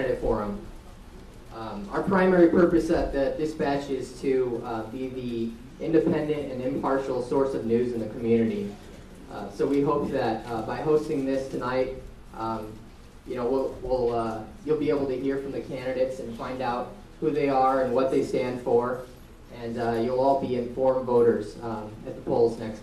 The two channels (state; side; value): identical; both; correlation 1.00